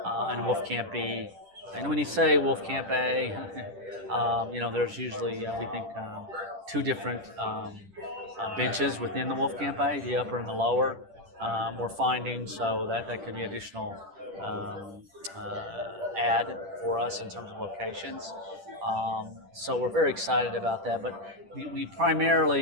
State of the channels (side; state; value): left; late; 10 ms